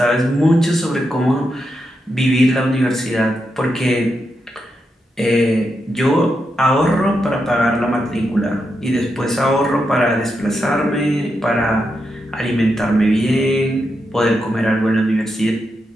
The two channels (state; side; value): normal; both; correlation 0.85